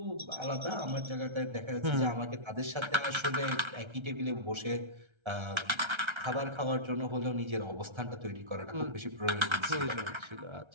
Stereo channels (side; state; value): left; late; 1.3 ms